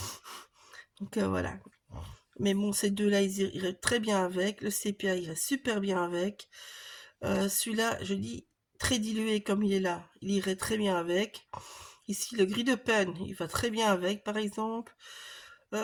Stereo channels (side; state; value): both; identical; correlation 1.00